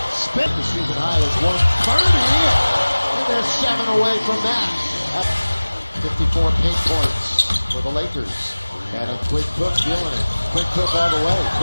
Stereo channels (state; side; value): inverted; both; correlation -1.00